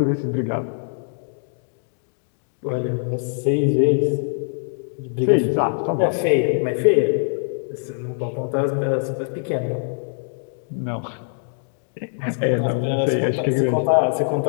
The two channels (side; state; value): right; silent; digital silence